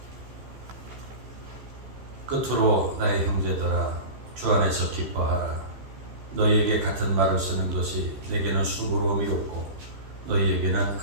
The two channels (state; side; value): late; left; 15 ms